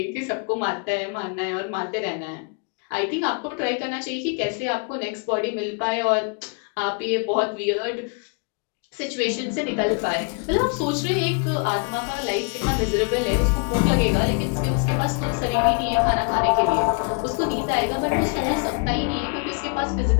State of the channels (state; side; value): quieter; right; 37.3 dB